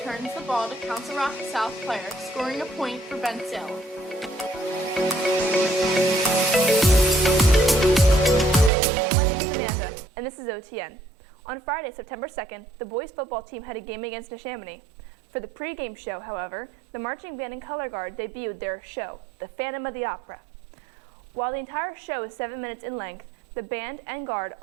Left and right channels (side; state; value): left; drops out; at 8.7 s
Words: the ball to Council Rock South player, scoring a point for Bensalem. My name is Amanda, and this is OTN. On Friday, September 2nd, the boys football team had a game against Neshaminy. For the pregame show, however, the marching band and color guard debuted their show, The Phantom of the Opera. While the entire show is 7 minutes in length, the band and guard